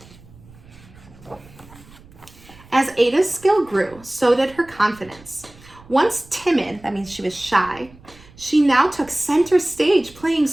As Ada's skill grew, so did her confidence. Once timid, that means she was shy, she now took center stage playing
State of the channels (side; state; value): right; noise; rumble, 23 dB below the sound